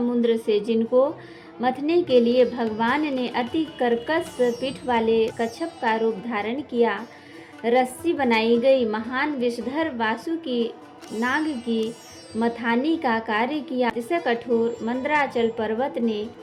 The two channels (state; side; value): identical; both; correlation 1.00